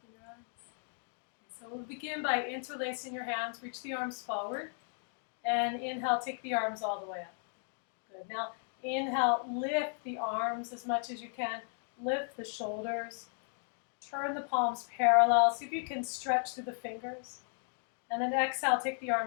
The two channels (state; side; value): silent; right; 54 dB below the other